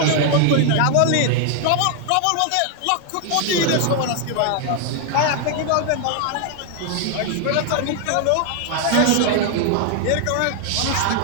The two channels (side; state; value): both; different; correlation 0.00